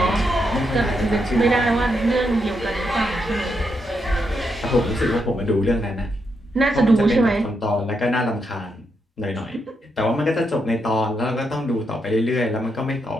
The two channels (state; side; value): normal; both; correlation 0.81